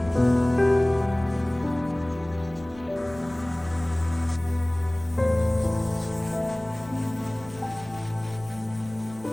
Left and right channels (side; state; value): right; noise; rumble, 21 dB below the sound